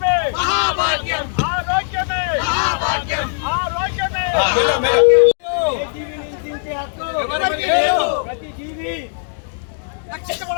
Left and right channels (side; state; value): right; silent; digital silence